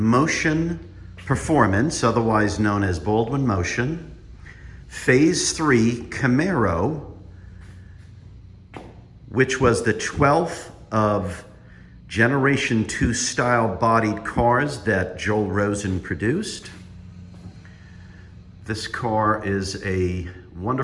Performance, otherwise known as Baldwin Motion, Phase III Camaro, which was the 12th of Generation 2 style bodied cars that Joel Rosen produced. This car is a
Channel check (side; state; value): both; identical; correlation 1.00